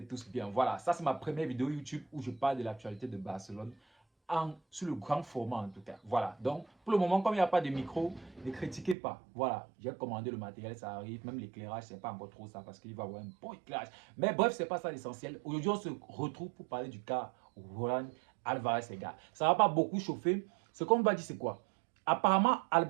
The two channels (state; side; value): drops out; left; at 9.0 s